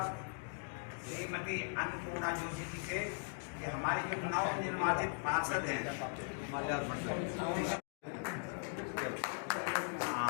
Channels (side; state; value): right; silent; 51 dB below the other